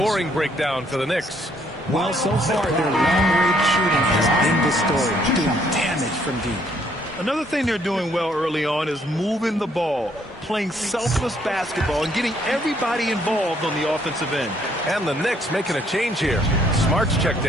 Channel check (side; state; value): both; normal; correlation 0.67